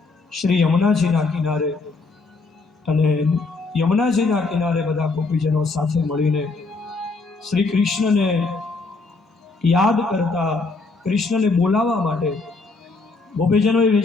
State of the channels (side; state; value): right; quieter; 3.8 dB